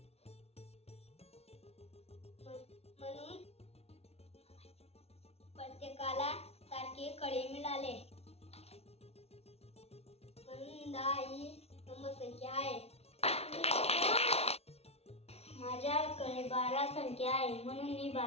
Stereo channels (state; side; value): late; right; 0.30 ms